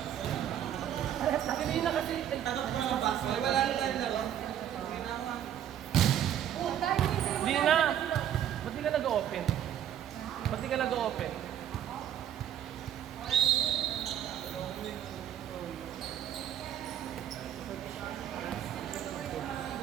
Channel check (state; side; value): quieter; left; 10.4 dB